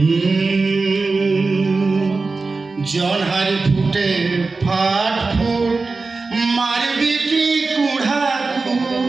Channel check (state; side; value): quieter; left; 3.9 dB